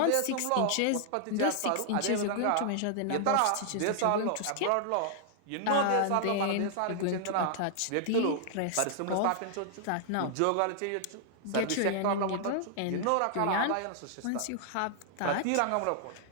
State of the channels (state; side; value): different; both; correlation -0.01